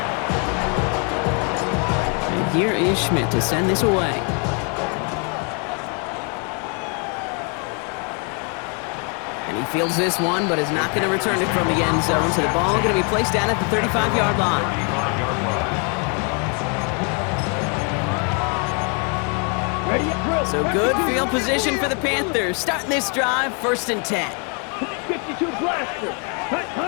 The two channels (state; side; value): quieter; right; 37.4 dB